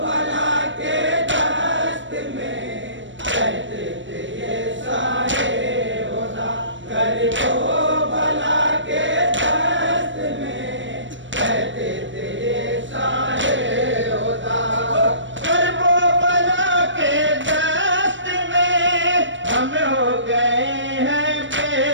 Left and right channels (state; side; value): late; left; 0.55 ms